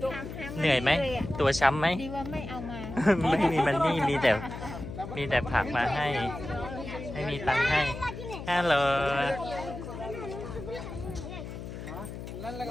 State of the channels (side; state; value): left; noise; hum, 9 dB below the sound